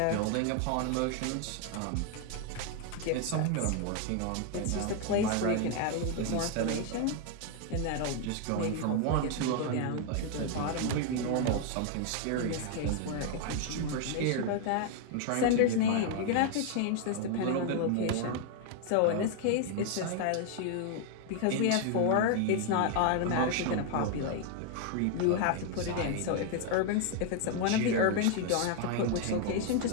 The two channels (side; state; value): both; different; correlation 0.00